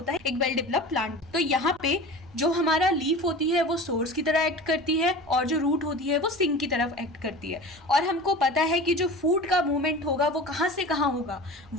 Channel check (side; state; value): right; noise; rumble, 26 dB below the sound